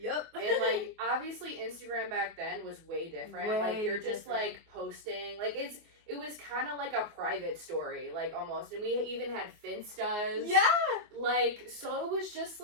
And, like, obviously Instagram back then was way different. Like, you're just, like, posting. Like, it was kind of like a private story, like, almost. And we even had Finstas. Yeah! Like, so it was just,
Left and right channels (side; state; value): left; late; 24 ms